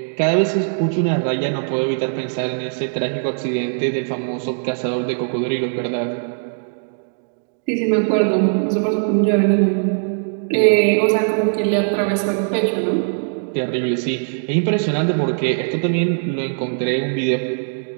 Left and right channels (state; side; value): silent; left; digital silence